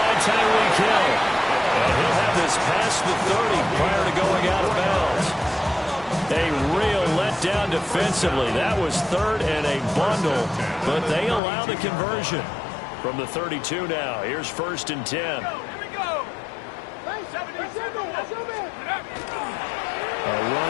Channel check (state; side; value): drops out; right; at 11.4 s